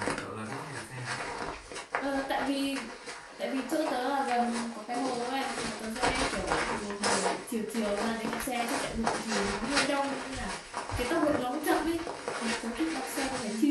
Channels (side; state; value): both; identical; correlation 1.00